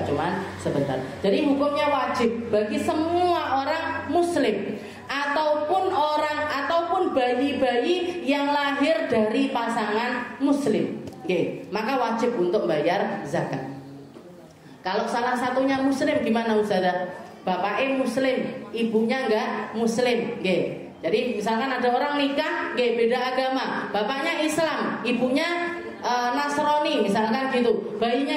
cuma sebentar. Jadi hukumnya wajib bagi semua orang muslim, ataupun bayi-bayi yang lahir dari pasangan muslim. Maka wajib untuk bayar zakat. Kalau salah satunya muslim gimana Ustazah? Bapaknya muslim, ibunya enggak muslim. Jadi misalkan ada orang nikah, beda agama, bapaknya Islam, ibunya Nasrani misalkan gitu. Bayinya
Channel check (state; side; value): identical; both; correlation 1.00